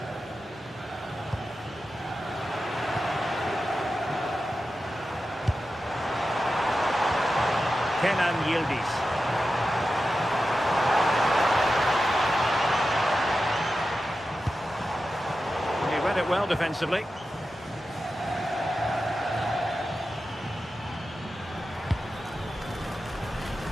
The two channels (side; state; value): both; normal; correlation 0.92